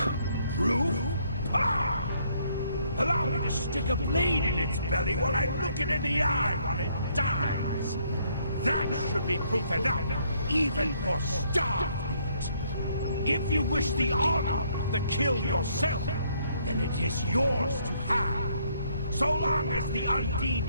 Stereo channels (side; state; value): both; inverted; correlation -0.68